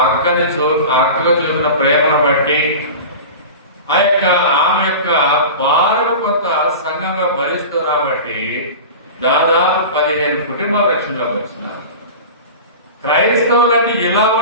అక్కగా చూపిన ప్రేమను బట్టి ఆమె యొక్క భారత కొంత సంఘంగా భరిస్తూ కాబట్టి దాదాపు 15 కుటుంబాల రక్షణలోకి వచ్చినారు. క్రైస్తవులని ఇలా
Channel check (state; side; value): inverted; both; correlation -0.32